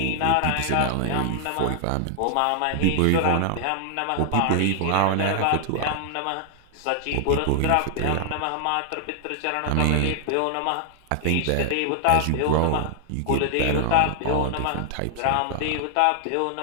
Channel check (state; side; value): different; both; correlation 0.00